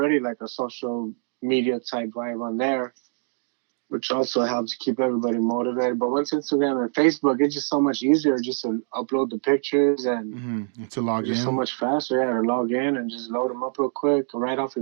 like a social media type vibe on there, which also helps keep everybody motivated. But once Instagram and Facebook, it's just so much easier just to upload the pictures, and Mm-hmm. To log it's just so in. much faster. Yeah, to log in and just load them up real quick, right off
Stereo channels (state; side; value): silent; left; digital silence